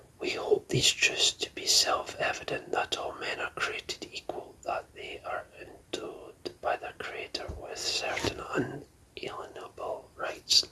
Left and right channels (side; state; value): both; identical; correlation 1.00